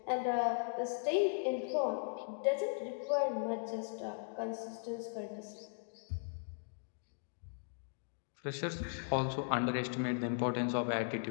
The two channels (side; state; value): right; silent; digital silence